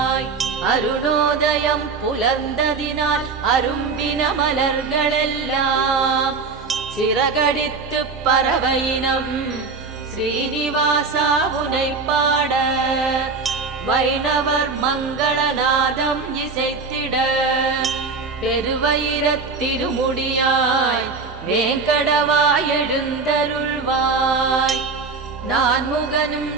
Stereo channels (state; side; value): quieter; left; 4.6 dB